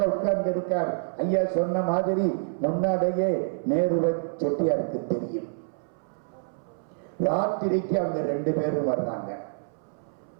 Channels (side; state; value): left; silent; 60 dB below the other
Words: உட்கார்ந்து இருக்கார். ஐயா சொன்ன மாதிரி முன்னாலேயே நேருவை செட்டியாருக்கு தெரியும். ராத்திரிக்கு அவங்க 2 பேரும் வர்றாங்க.